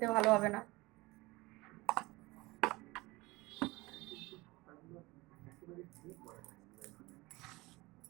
ভালো হবে না।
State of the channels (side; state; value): left; quieter; 21.8 dB